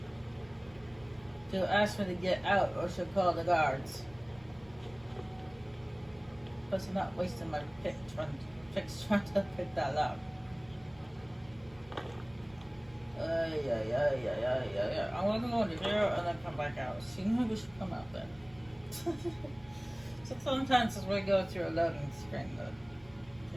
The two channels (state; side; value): noise; right; hum, 25 dB below the sound